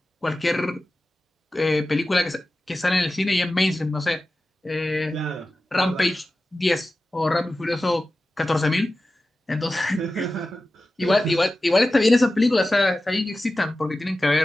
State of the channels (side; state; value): both; normal; correlation 0.94